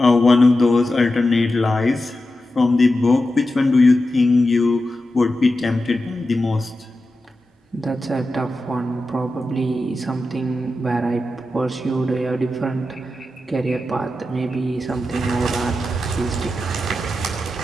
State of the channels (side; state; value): both; normal; correlation 0.91